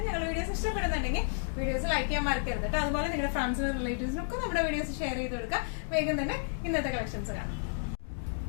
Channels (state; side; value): silent; right; digital silence